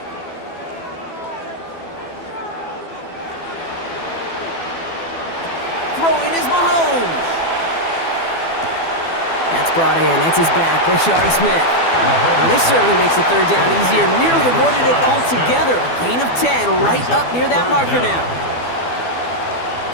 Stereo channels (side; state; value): right; late; 12 ms